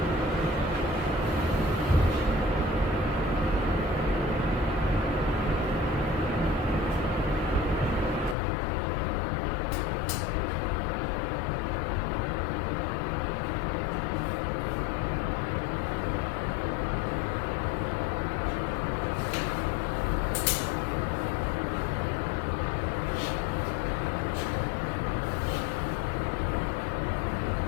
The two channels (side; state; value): right; drops out; at 8.3 s